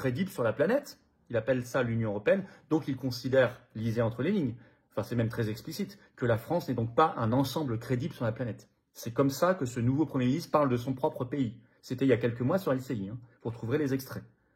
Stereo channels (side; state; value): both; identical; correlation 1.00